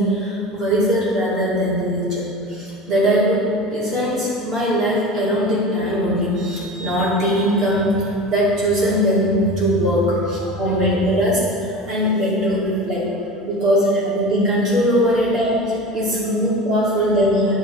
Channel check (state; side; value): normal; both; correlation 0.33